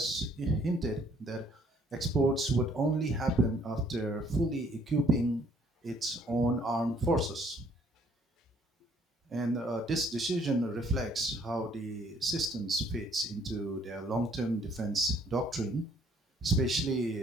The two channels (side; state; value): both; normal; correlation 0.63